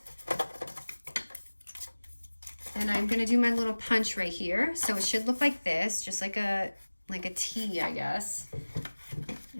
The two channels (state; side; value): inverted; both; correlation -1.00